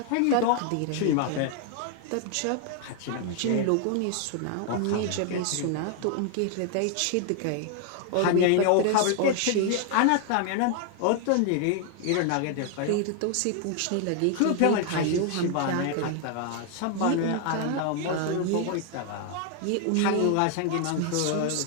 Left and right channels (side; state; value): both; different; correlation 0.00